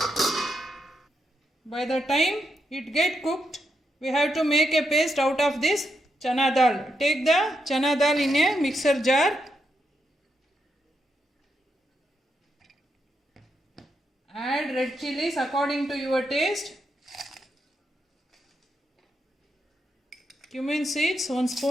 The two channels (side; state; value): both; normal; correlation 0.82